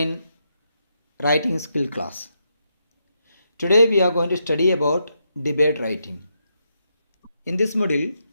writing skill class. Today we are going to study about debate writing. In this module,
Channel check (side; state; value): both; inverted; correlation -0.82